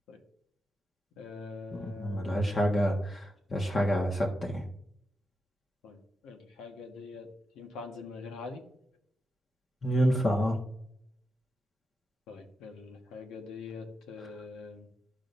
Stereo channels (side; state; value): both; normal; correlation 0.87